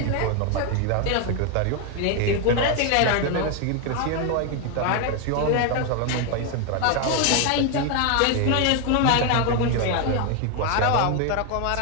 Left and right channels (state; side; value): different; both; correlation 0.01